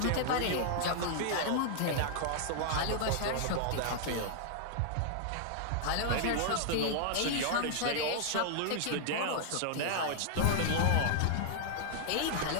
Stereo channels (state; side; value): different; both; correlation -0.01